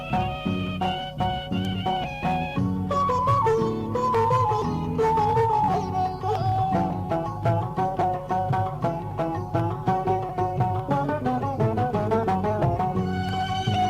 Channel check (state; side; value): identical; both; correlation 1.00